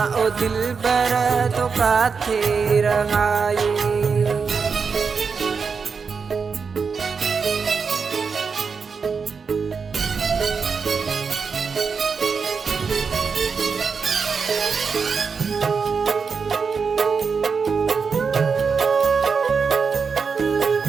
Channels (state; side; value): quieter; left; 5.4 dB